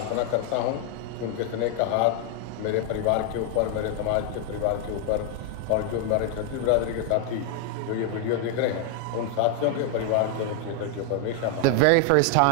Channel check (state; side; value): different; both; correlation 0.00